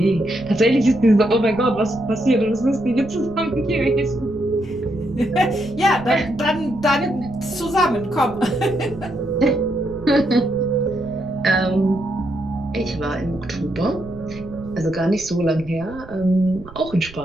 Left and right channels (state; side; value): noise; right; rumble, 17 dB below the sound